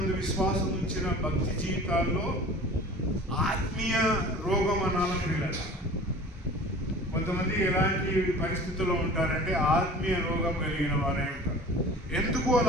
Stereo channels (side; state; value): both; normal; correlation 0.42